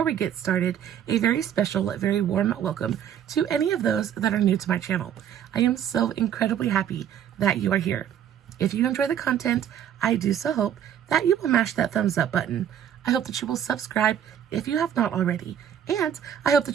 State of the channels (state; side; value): quieter; left; 9.6 dB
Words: we get started, a very special, very warm welcome to any of those that are new to my channel. I am so incredibly happy that you are here. If you enjoy the content, I do so hope that you will mash that thumbs up button. I hope that you will subscribe if you have not already. And I hope